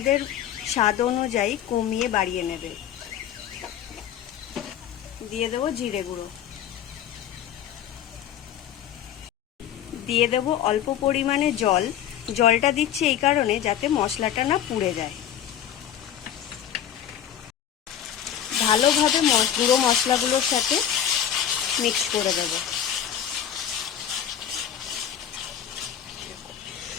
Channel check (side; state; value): right; quieter; 10.0 dB